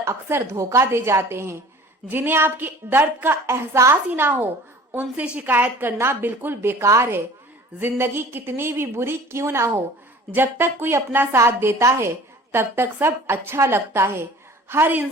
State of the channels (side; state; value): both; normal; correlation 0.46